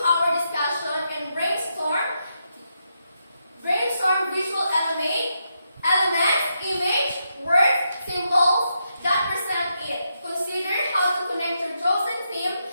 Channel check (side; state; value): both; inverted; correlation -0.82